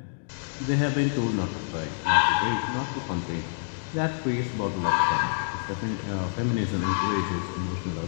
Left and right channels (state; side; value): silent; right; digital silence